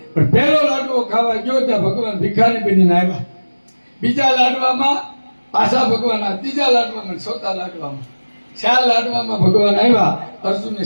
પણ પહેલો લાડવો ખાવા ગયો ત્યાં ભગવાન ભિખારી બનીને આવ્યા બીજા લાડવામાં પાછા ભગવાન ત્રીજા લાડવામાં ચોથા લાડવામાં 4 લાડવામાં ભગવાન આવ્યા અર્જુનને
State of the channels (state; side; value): inverted; both; correlation -1.00